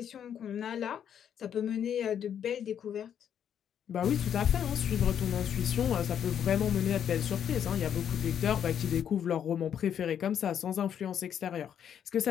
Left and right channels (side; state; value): right; quieter; 8.9 dB